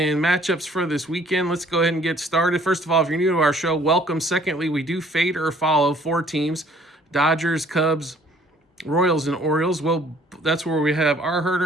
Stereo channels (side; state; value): both; normal; correlation 0.58